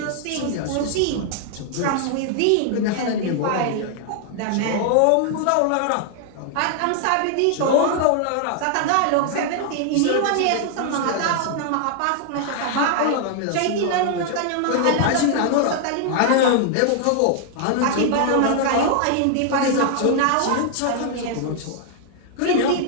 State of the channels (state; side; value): different; both; correlation 0.00